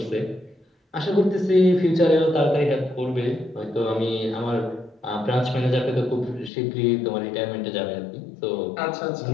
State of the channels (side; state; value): right; drops out; at 6.5 s